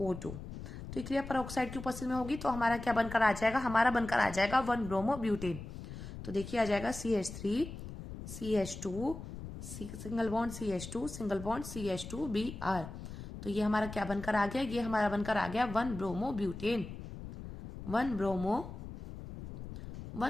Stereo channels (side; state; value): left; noise; rumble, 10 dB below the sound